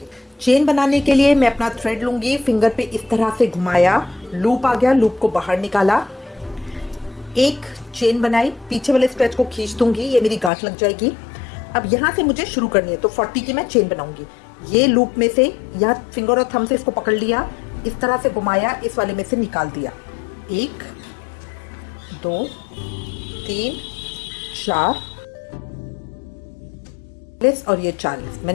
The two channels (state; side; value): drops out; right; at 10.5 s